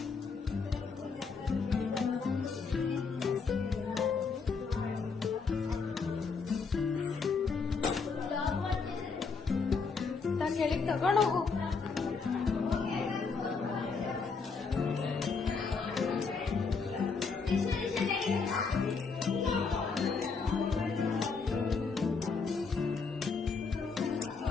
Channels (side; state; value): right; quieter; 4.9 dB